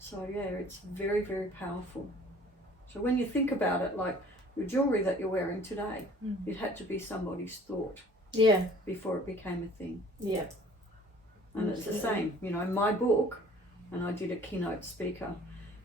yeah, it's very, very powerful. So when you think about it, like the jewellery that you're wearing today, it had to be somebody's thought. Yeah. Before it became a thing. Yeah. And it's the same, you know, my book, and I did a keynote speaker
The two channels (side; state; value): both; normal; correlation 0.51